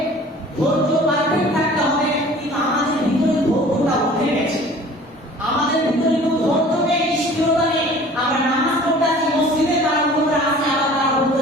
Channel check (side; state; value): both; normal; correlation 0.47